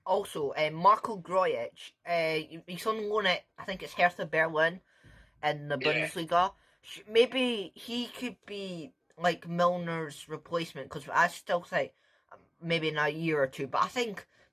also Marco Grujic. He's on loan at, I think it's Hertha Berlin in the Bundesliga. Maybe he could be like Milner's replacement, because I still think maybe in a year or two. But I think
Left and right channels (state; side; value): identical; both; correlation 1.00